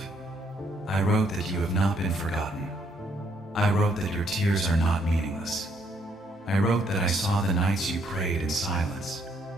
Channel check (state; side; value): normal; both; correlation 0.70